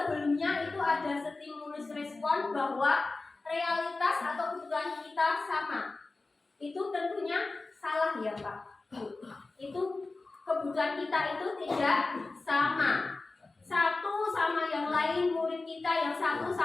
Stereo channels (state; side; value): quieter; right; 3.5 dB